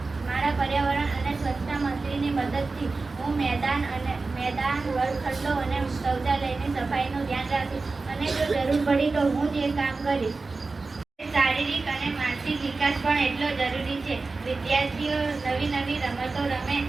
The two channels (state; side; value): quieter; left; 3.8 dB